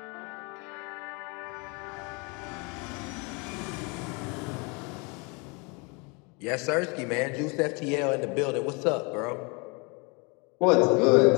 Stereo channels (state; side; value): quieter; right; 30.5 dB